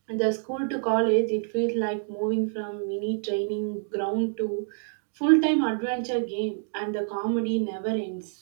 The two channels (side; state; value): left; silent; digital silence